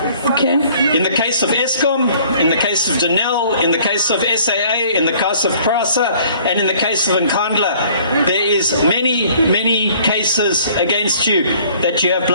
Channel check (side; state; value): both; inverted; correlation -0.56